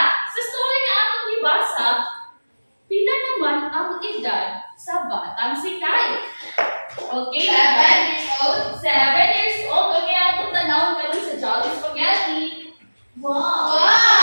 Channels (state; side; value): inverted; both; correlation -1.00